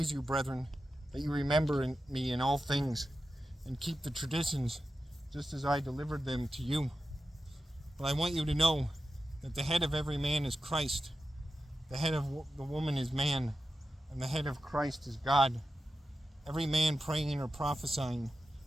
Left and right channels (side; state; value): both; normal; correlation 0.92